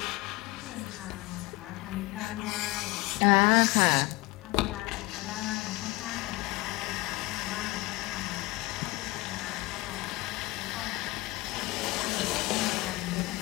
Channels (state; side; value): quieter; right; 21.5 dB